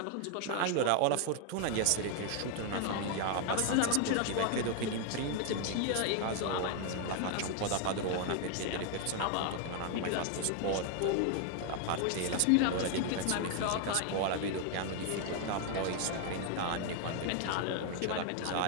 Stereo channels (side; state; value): both; different; correlation 0.00